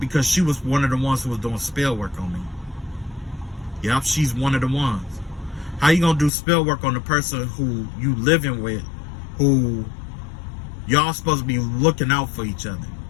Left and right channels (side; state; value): right; drops out; at 6.3 s